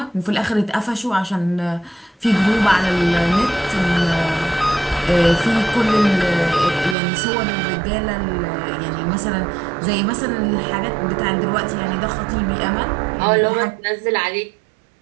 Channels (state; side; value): drops out; left; at 7.0 s